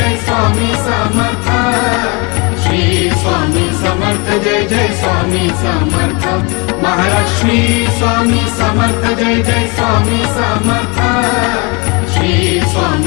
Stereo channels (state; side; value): quieter; right; 30.0 dB